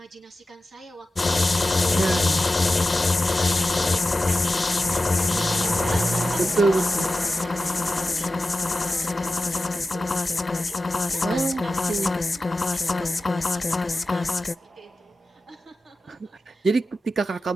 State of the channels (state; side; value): normal; both; correlation 0.94